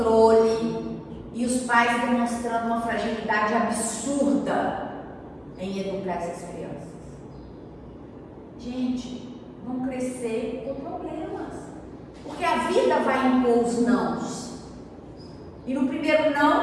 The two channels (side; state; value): both; identical; correlation 1.00